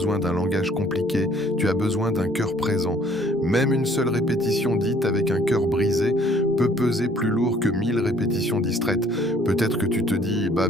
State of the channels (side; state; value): both; normal; correlation 0.58